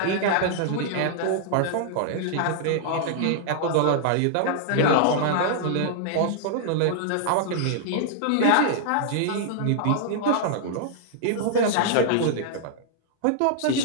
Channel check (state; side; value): different; both; correlation -0.01